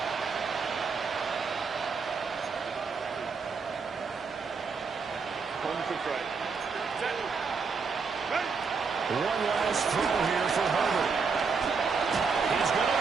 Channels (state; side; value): quieter; left; 5.1 dB